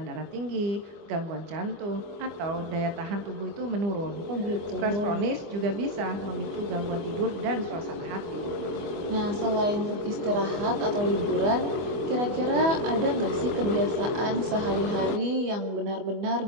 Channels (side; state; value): left; late; 24 ms